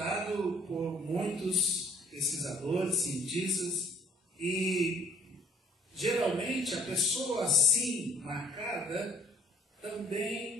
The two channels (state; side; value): normal; both; correlation 0.58